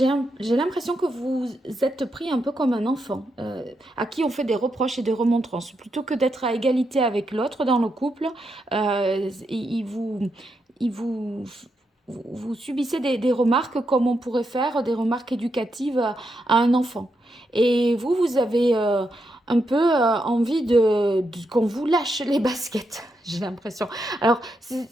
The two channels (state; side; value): normal; both; correlation 0.83